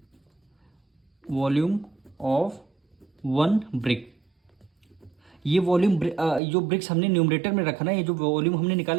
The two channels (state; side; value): drops out; left; at 6.4 s